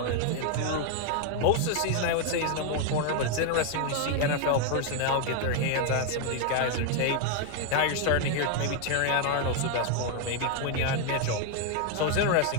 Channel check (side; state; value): both; different; correlation 0.00